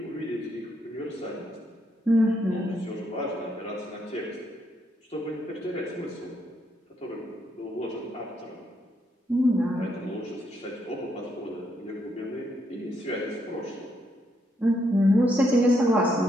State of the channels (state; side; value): normal; both; correlation 0.76